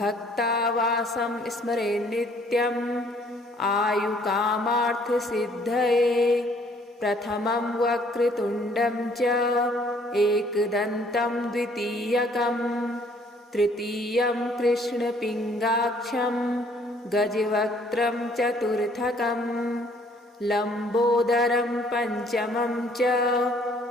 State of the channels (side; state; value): both; normal; correlation 0.61